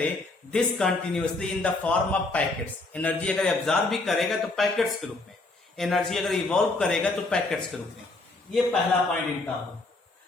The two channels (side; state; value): right; quieter; 3.2 dB